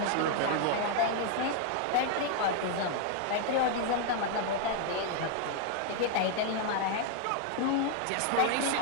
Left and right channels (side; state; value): both; different; correlation 0.00